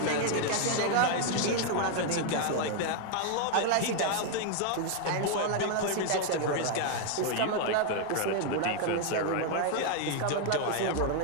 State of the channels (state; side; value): different; both; correlation 0.00